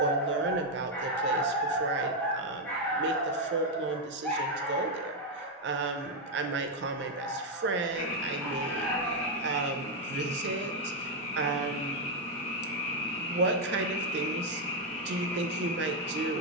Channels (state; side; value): normal; both; correlation 0.02